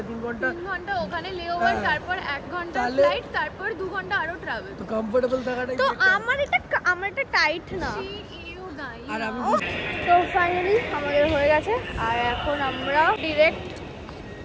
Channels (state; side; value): identical; both; correlation 1.00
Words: ঘন্টা ওখানে লেওভার, তারপর 1 ঘন্টা ফ্লাইট, তারপর 2 ঘন্টা আরো ট্রাভেল। তো কমফোর্টেবল থাকাটাই তো আমার এটা টাইট না। আর আমি তো ফাইনালি আমাদের হয়ে গেছে, আর এখন আমরা ডিরেক্ট